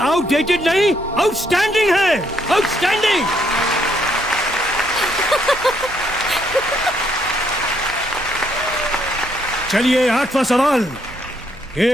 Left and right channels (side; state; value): right; noise; hum, 24 dB below the sound